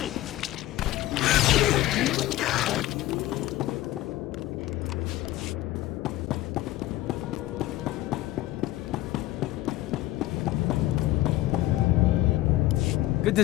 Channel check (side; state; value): right; quieter; 16.0 dB